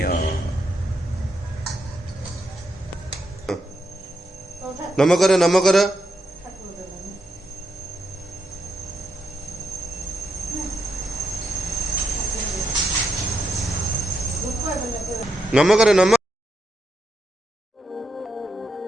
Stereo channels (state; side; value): normal; both; correlation 0.83